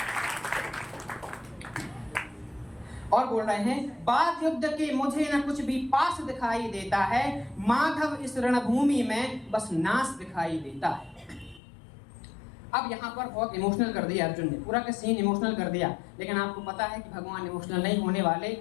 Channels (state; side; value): drops out; right; at 11.6 s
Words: और बोल रहे हैं, बाद युद्ध के मुझे न कुछ भी पास दिखाई देता है, माधव इस रणभूमि में बस नाश दिखाई देता है। अब यहाँ पर बहुत इमोशनल कर दिया अर्जुन ने, पूरा का सीन इमोशनल कर दिया, लेकिन आपको पता है कि भगवान इमोशनल नहीं होने वाले,